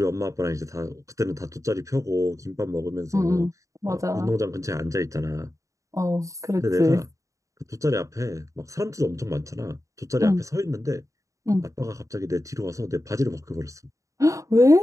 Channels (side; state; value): left; late; 0.16 ms